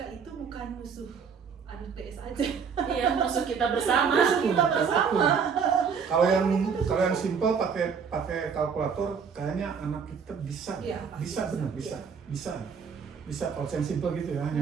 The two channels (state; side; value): quieter; left; 6.3 dB